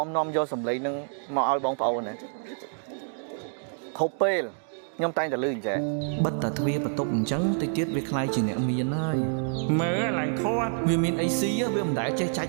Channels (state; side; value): silent; left; digital silence